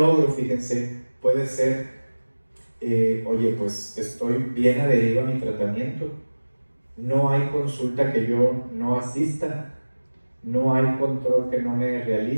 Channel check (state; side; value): inverted; both; correlation -1.00